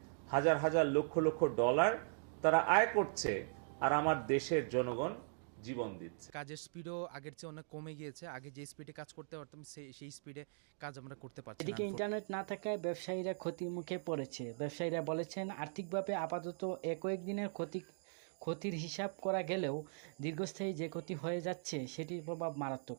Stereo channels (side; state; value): left; silent; digital silence